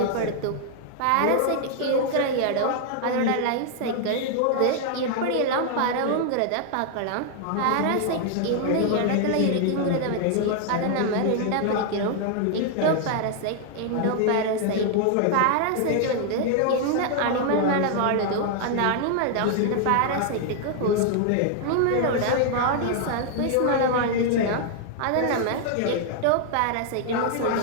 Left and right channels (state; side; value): different; both; correlation 0.00